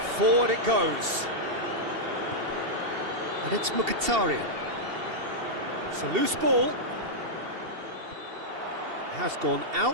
Forward it goes. And it's Mkhitaryan. It's a loose ball. Has gone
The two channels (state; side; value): late; left; 2.7 ms